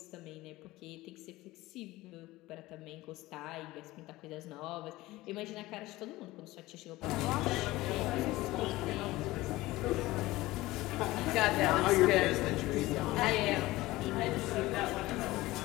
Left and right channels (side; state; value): right; quieter; 18.6 dB